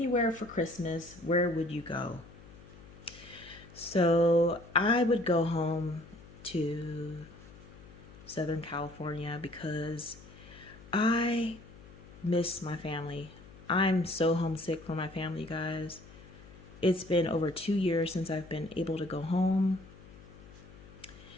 for Christmas, where would you go? So I would go home to Southern California because I miss my family. I'm so homesick for my family, guys. It's been over 2 years since I've been able to go home.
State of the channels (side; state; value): left; noise; hum, 20 dB below the sound